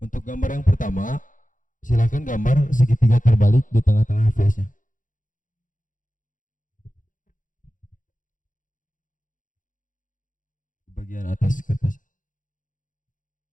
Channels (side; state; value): right; late; 0.38 ms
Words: gambar yang pertama, silakan gambar segitiga terbalik di tengah-tengah face-nya. Di bagian atas kertas.